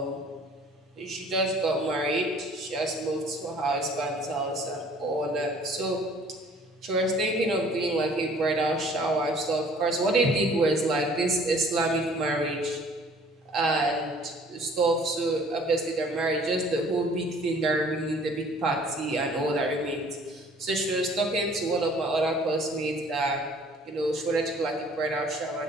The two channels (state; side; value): normal; both; correlation 0.54